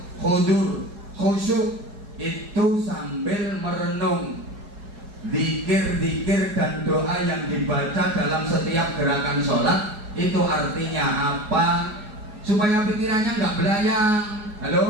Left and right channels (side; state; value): left; late; 4.8 ms